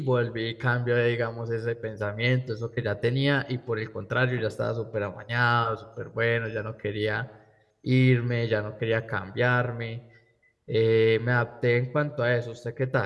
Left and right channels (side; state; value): both; identical; correlation 1.00